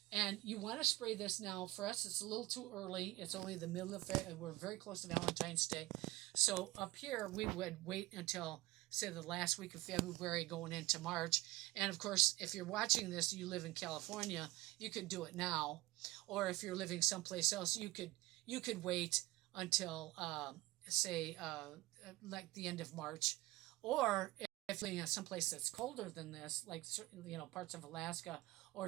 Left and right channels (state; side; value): quieter; left; 19.4 dB